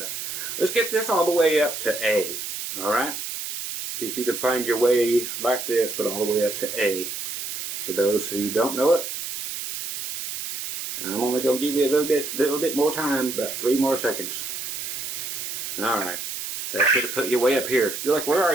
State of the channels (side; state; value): right; noise; hiss, 5 dB below the sound